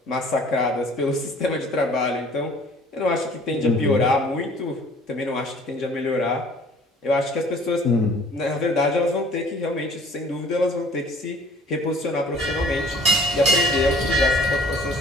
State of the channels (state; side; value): normal; both; correlation 0.51